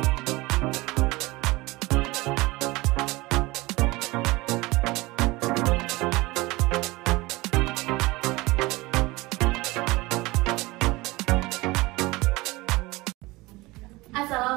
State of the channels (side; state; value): left; quieter; 21.6 dB